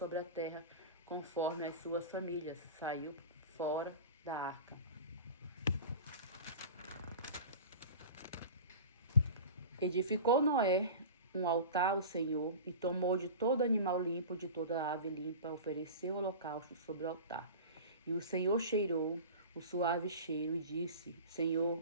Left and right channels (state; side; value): inverted; both; correlation -0.34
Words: a terra, conforme as suas famílias, saiu fora da arca. Edificou Noé um altar ao Senhor, e tomou de todo animal limpo, de toda ave limpa, ofereceu holocausto sobre o altar. E o Senhor cheirou o suave cheiro e disse: